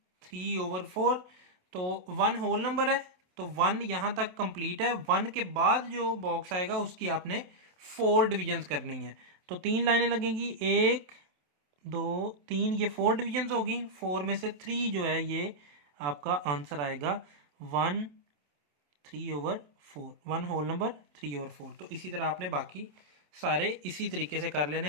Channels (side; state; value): left; late; 27 ms